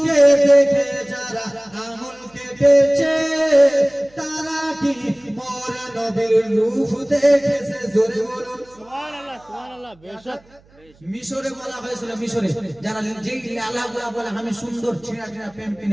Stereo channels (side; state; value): right; noise; hum, 29 dB below the sound